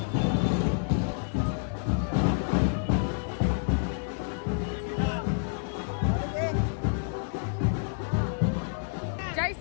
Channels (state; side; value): silent; right; digital silence